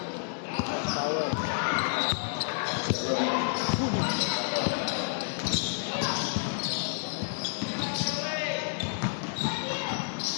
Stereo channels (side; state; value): right; silent; 58 dB below the other